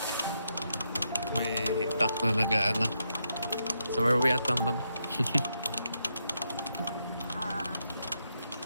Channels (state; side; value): inverted; both; correlation -0.82